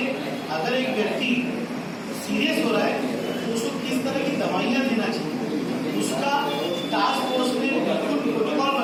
अगर एक व्यक्ति सीरियस हो रहा है तो उसको किस तरह की दवाइयाँ देना चाहिए, उसका टास्क फोर्स ने बिल्कुल प्रोटोकॉल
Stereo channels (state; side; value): identical; both; correlation 1.00